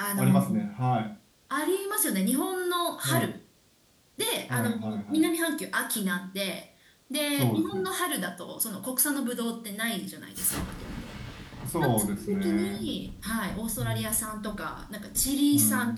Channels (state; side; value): identical; both; correlation 1.00